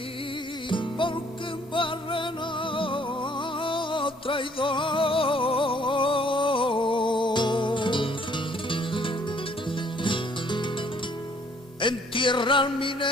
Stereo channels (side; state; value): both; normal; correlation 0.62